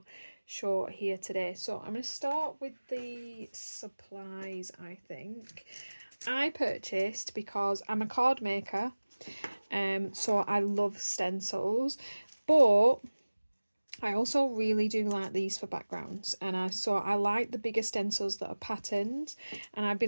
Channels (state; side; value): inverted; both; correlation -1.00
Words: show here today. So I'm going to start with the supplies. I think I purchased, because I'm a card maker, so I love stencils, but I also really do like these for backgrounds, and I like the bigger stencils that are patterned, and I've